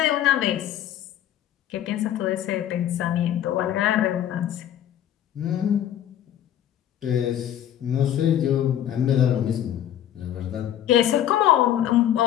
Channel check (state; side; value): quieter; right; 11.0 dB